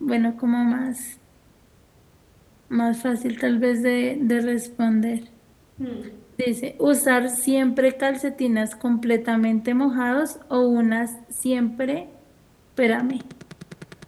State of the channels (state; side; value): identical; both; correlation 1.00